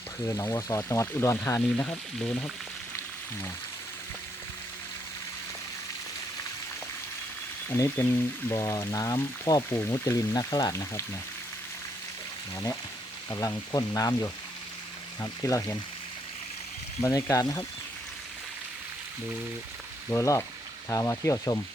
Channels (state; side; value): normal; both; correlation 0.74